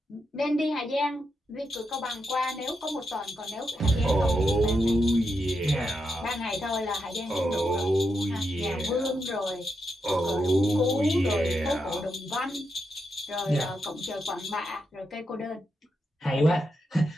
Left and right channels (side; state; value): both; normal; correlation 0.84